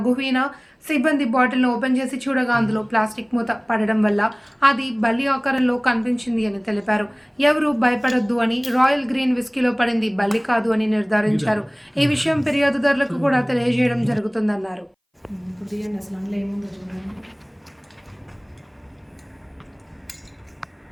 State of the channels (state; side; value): identical; both; correlation 1.00